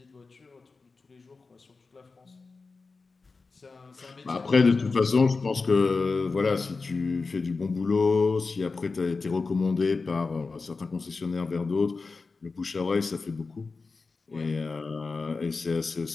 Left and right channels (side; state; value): right; quieter; 4.2 dB